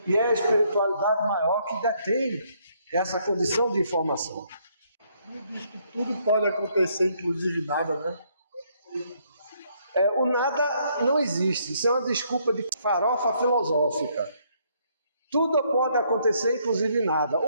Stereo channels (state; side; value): inverted; both; correlation -0.70